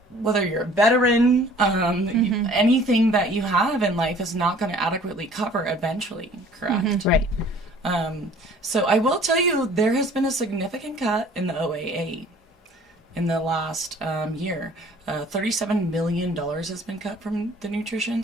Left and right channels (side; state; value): both; normal; correlation 0.52